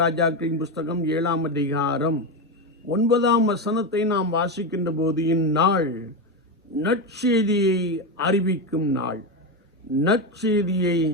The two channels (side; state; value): both; normal; correlation 0.13